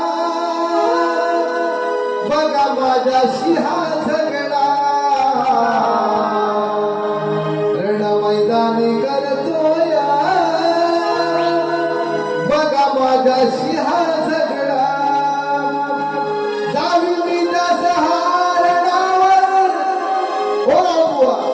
बघा माझ्याशी हा झगडा रण मैदानी करतोया बघा माझ्याशी हा झगडा जावी मी त्या सहारणावर हो बुवा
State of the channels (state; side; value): identical; both; correlation 1.00